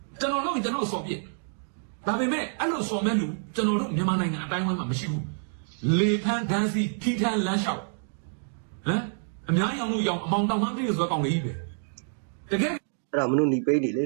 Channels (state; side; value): silent; left; digital silence